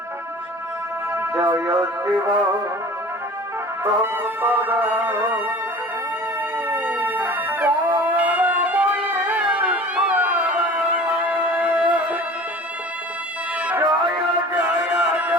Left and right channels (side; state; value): both; normal; correlation 0.42